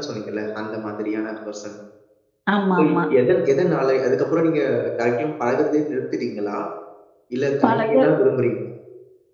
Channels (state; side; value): identical; both; correlation 1.00